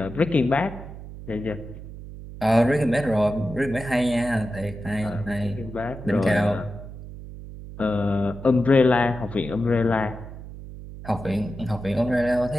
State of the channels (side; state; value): right; noise; hum, 13 dB below the sound